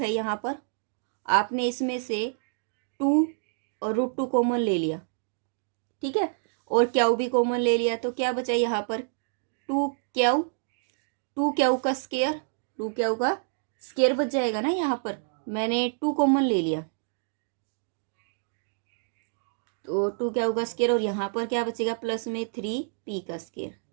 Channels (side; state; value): left; silent; digital silence